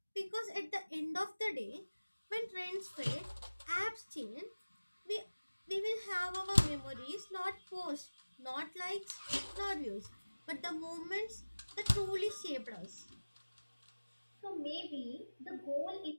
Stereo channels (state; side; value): inverted; both; correlation -1.00